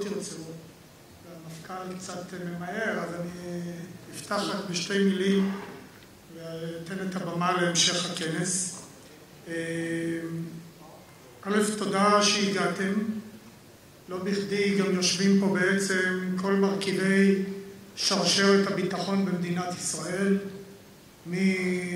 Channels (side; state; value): both; identical; correlation 1.00